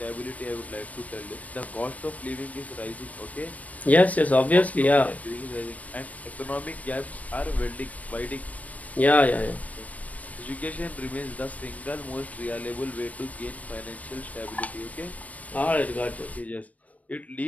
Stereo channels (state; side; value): late; right; 0.069 ms